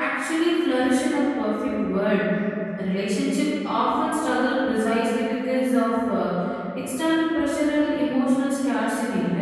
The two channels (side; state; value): both; identical; correlation 1.00